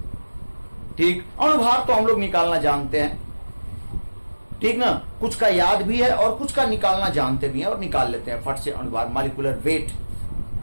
ठीक, अणुभार तो हम लोग निकालना जानते हैं, ठीक ना, कुछ का याद भी है और कुछ का निकालना जानते भी हैं और निकाल लेते हैं फट से, अणुभार, मॉलिक्यूलर वेट।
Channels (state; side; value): inverted; both; correlation -1.00